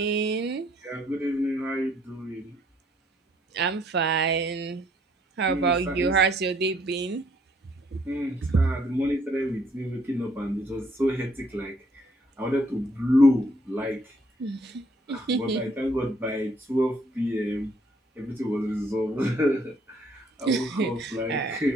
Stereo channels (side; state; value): both; normal; correlation 0.65